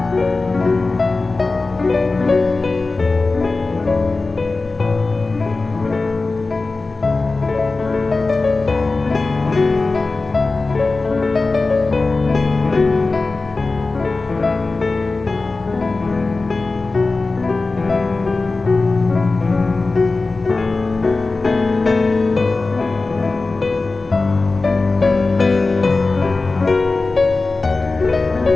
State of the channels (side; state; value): right; quieter; 3.6 dB